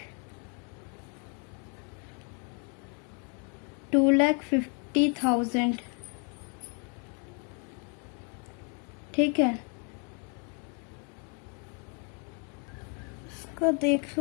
ठीक है, इसका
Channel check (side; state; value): right; quieter; 38.2 dB